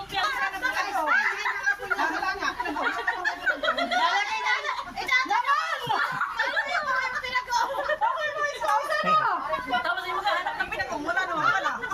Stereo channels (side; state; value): both; identical; correlation 1.00